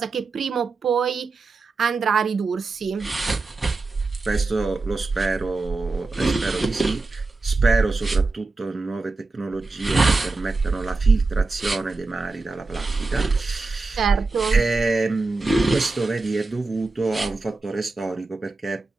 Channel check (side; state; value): left; quieter; 3.7 dB